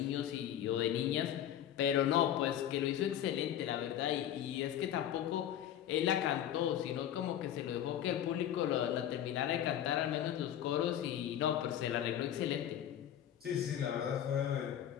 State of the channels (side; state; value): right; quieter; 10.7 dB